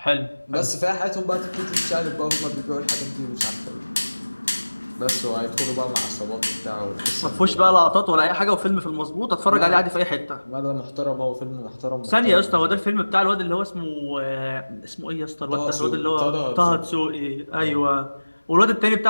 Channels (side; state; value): both; inverted; correlation -1.00